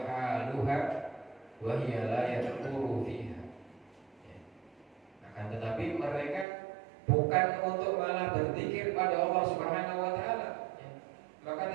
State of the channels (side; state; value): left; drops out; at 6.5 s